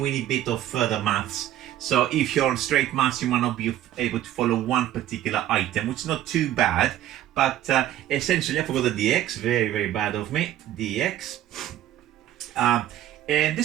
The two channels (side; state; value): left; quieter; 12.6 dB